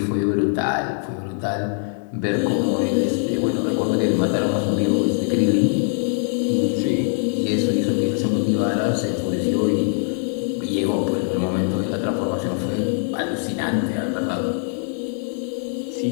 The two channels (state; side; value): silent; right; digital silence